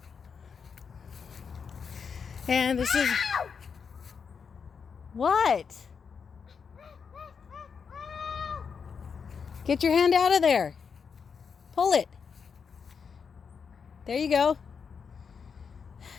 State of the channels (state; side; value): quieter; right; 6.1 dB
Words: And this is... What? Get your hand out of there. Pull it. There you go.